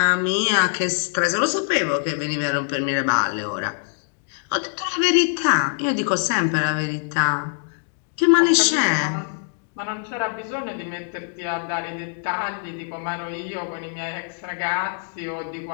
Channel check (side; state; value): right; silent; 63 dB below the other